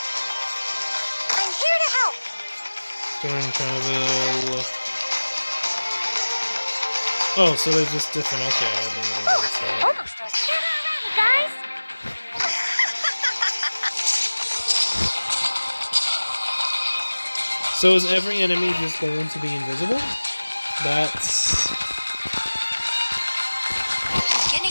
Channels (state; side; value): inverted; both; correlation -1.00